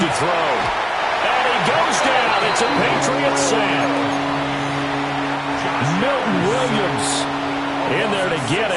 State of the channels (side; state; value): both; identical; correlation 1.00